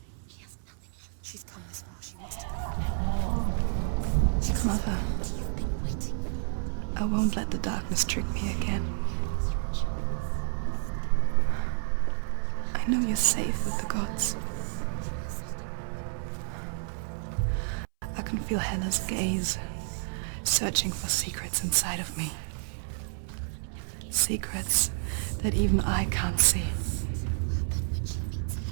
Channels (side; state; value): left; silent; 58 dB below the other